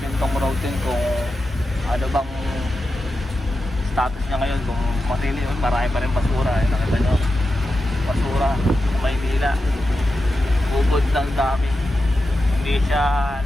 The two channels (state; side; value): normal; both; correlation 0.90